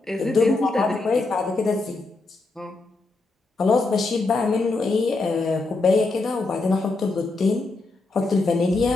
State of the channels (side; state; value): right; quieter; 3.4 dB